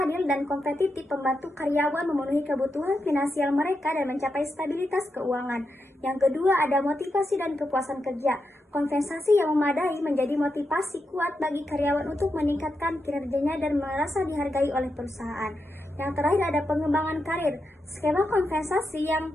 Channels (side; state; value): both; normal; correlation 0.86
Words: dan kompetitif membantu karyawan memenuhi kebutuhan finansial mereka dan mencapai stabilitas keuangan. Yang kedua ada motivasi dan kepuasan kerja. Kompensasi yang memadai menjadi motivasi kuat bagi karyawan untuk meningkatkan kinerjanya dan merasa dihargai oleh perusahaan. Yang terakhir ada pengembangan karir. Skema kompensasi yang